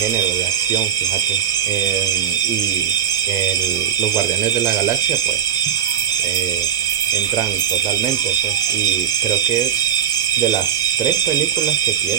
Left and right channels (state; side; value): quieter; left; 9.1 dB